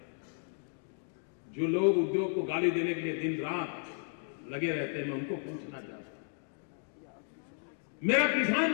जो लोग उद्योग को गाली देने के लिए दिन रात लगे रहते हैं, मैं उनको पूछना चाहता हूं, मेरा किसान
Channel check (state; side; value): silent; right; 55 dB below the other